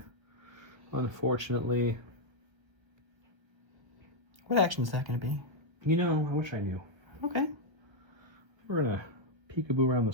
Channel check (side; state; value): left; late; 1.3 ms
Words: unfortunately. What action is that going to be? I wish I knew. Okay. We're going to peekaboo around